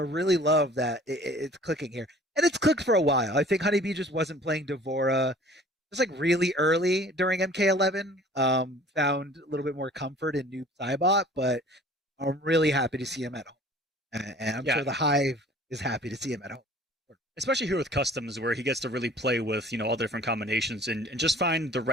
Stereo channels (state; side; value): normal; both; correlation 0.49